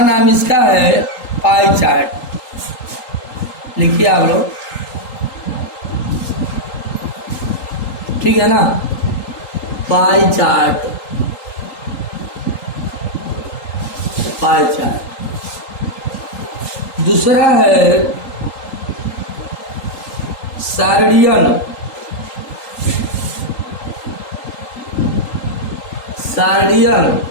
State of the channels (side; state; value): right; late; 3.8 ms